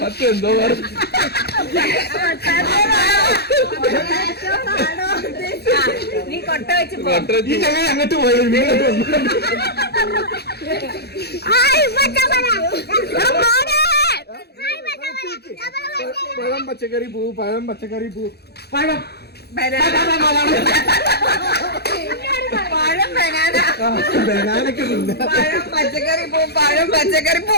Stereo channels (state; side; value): late; right; 0.47 ms